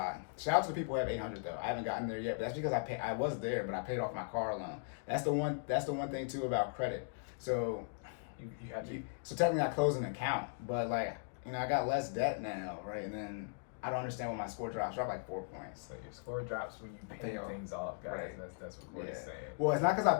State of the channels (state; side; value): silent; right; digital silence